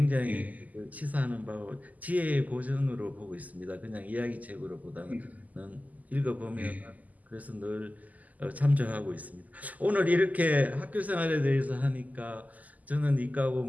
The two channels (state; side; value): late; left; 0.078 ms